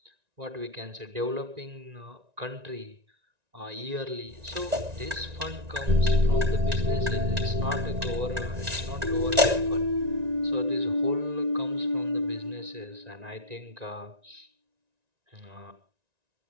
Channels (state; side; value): late; left; 1.9 ms